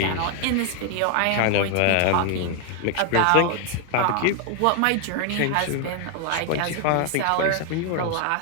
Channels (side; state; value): both; different; correlation 0.00